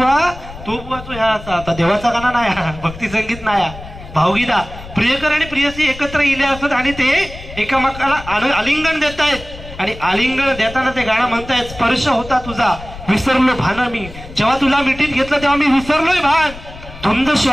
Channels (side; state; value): left; noise; rumble, 14 dB below the sound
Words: तो बुवा तो ह्या आता देवाचा गाणं नाही, भक्ती संगीत नाही, भावगीता. प्रियकर आणि प्रियसी एकत्र इले असत आणि ते एकामेकाला आलिंगन देत आहेत. आणि आलिंगन देताना ते गाणं म्हणतायत, स्पर्श होता तुझा विसरलो भान मी. जेव्हा तुला मिठीत घेतलं तेव्हा मी विसरलोय भान, धुंद